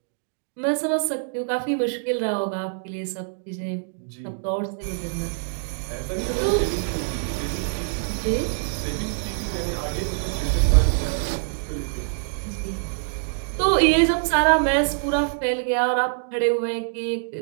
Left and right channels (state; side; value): silent; left; digital silence